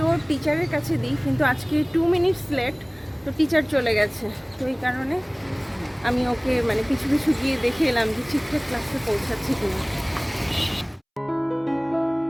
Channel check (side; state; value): both; identical; correlation 1.00